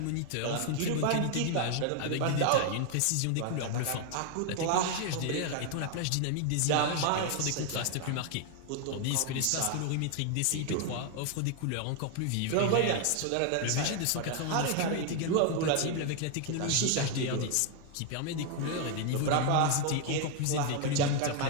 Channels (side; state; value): both; different; correlation 0.00